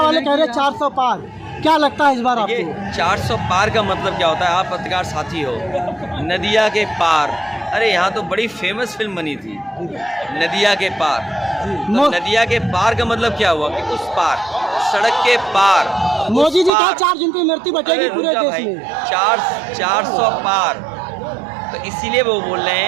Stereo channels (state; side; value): drops out; left; at 16.7 s